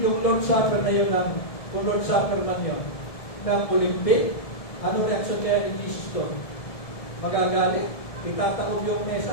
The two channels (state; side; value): late; right; 1.7 ms